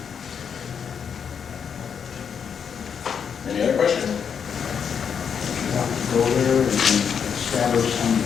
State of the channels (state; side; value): quieter; right; 7.2 dB